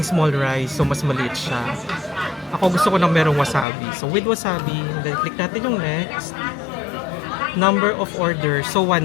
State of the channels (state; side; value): drops out; right; at 3.7 s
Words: small rice, so mas maliit siya. Ako gusto ko ng merong wasabi. So, with wasabi, then click natin yung next. Number of orders, so